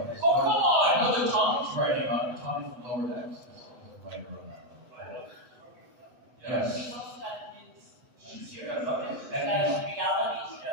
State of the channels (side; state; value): left; late; 8.0 ms